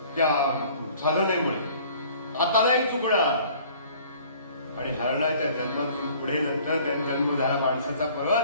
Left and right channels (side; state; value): both; inverted; correlation -0.52